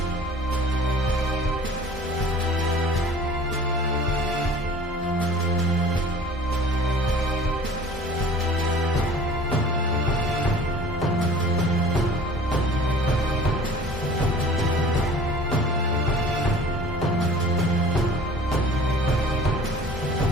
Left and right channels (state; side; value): normal; both; correlation 0.46